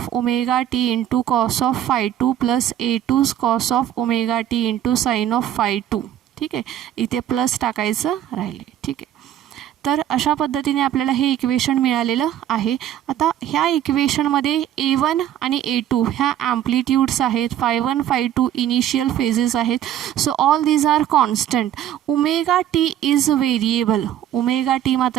omega T into cos of phi 2 plus a2 cos of omega T into sine of phi 2. ठीक आहे, इथे plus टाकायचं राहिले. ठीक आहे, तर अशा पद्धतीने आपल्याला हे इक्वेशन मिळालेलं आहे. आता ह्या इक्वेशनमध्ये a1 आणि a2 ह्या ॲम्प्लिट्यूड्स आहेत, फाय 1 फाय 2 इनिशियल फेजेस आहेत. So all these are constant. Omega T is variable. Omega T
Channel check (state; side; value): quieter; left; 11.3 dB